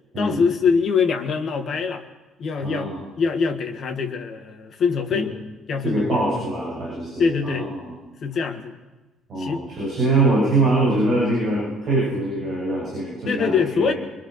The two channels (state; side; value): normal; both; correlation 0.61